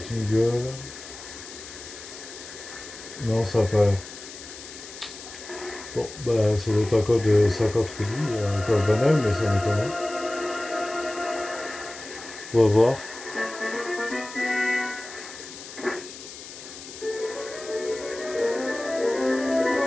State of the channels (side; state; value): left; noise; hiss, 14 dB below the sound